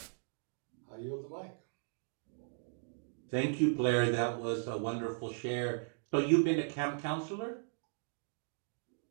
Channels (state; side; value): silent; left; digital silence